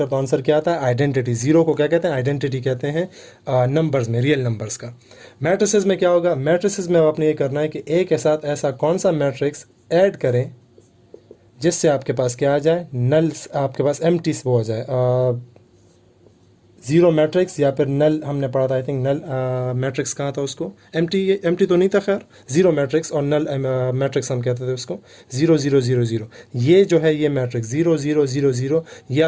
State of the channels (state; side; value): identical; both; correlation 1.00